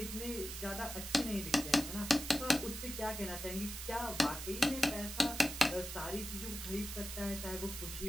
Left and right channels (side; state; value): right; noise; hiss, 7 dB below the sound